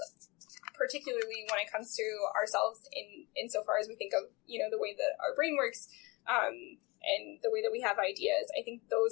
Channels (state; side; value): quieter; right; 25.2 dB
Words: particularly when it comes to ourselves insofar as we think of, the way that our brain works, and the way that we have ideas, I think